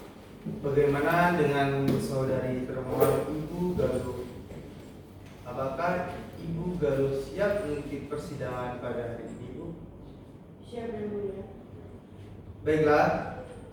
Bagaimana dengan saudari termohon Ibu Galuh? Apakah Ibu Galuh siap mengikuti persidangan pada hari ini, Bu? Siap, yang mulia. Baiklah,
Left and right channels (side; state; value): both; identical; correlation 1.00